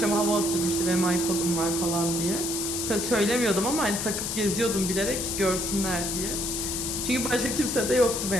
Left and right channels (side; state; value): left; noise; hiss, 2 dB below the sound